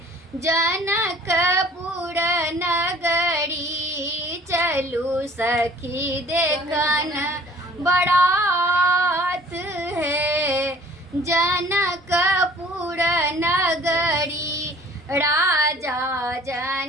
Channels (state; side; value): normal; both; correlation 0.51